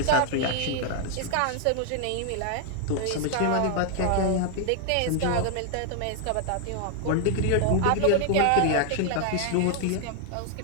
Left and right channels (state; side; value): different; both; correlation 0.00